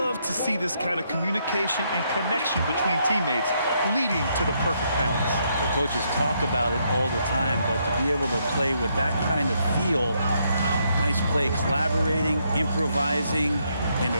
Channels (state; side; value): inverted; both; correlation -0.75